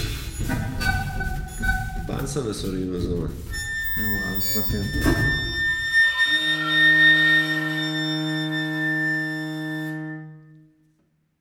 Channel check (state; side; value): identical; both; correlation 1.00